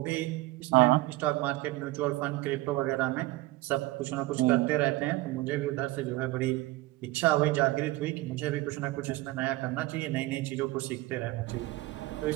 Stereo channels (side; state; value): left; quieter; 19.3 dB